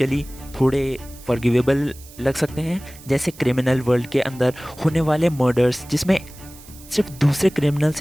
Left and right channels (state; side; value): noise; right; hiss, 21 dB below the sound